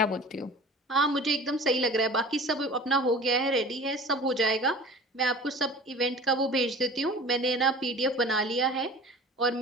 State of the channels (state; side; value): normal; both; correlation 0.41